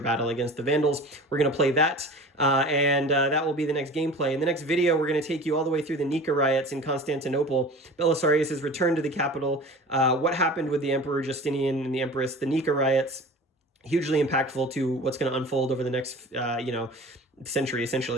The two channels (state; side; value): normal; both; correlation 0.39